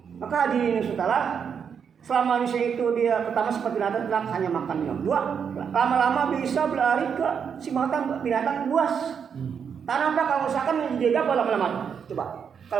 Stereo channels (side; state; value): left; quieter; 7.1 dB